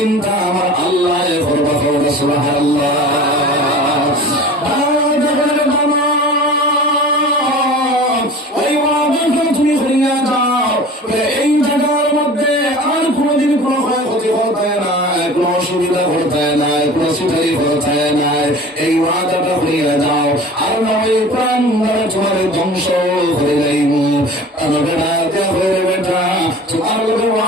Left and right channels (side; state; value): both; normal; correlation 0.40